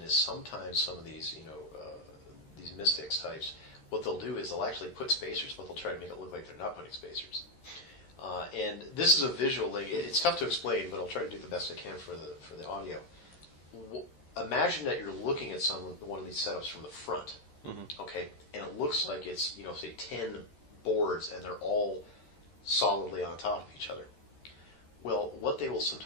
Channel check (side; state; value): right; late; 13 ms